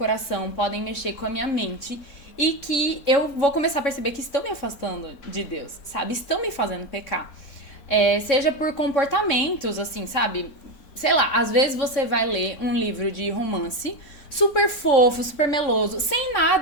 podem mexer com a minha mente e que eu vou começar a perceber que estão me afastando de Deus, sabe? Estão me fazendo pecar. Seja por comportamentos, assim, sabe? Sei lá, às vezes você vai ler um livro de romance super fofo, super meloso, sem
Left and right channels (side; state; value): right; late; 3.6 ms